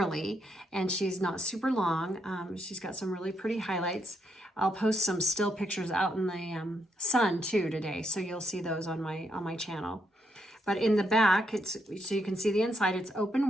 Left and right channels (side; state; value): both; normal; correlation 0.78